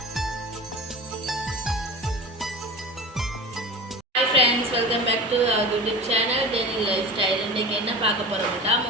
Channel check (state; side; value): normal; both; correlation 0.33